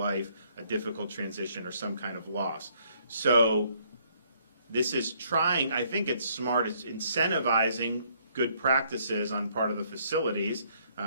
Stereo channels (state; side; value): inverted; both; correlation -0.67